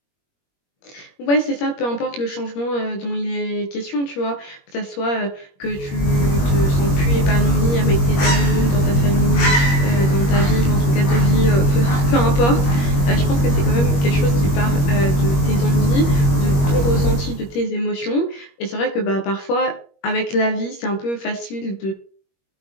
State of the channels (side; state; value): right; late; 21 ms